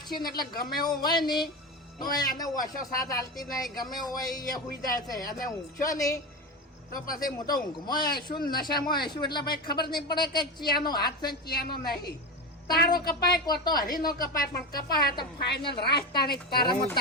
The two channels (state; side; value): normal; both; correlation 0.20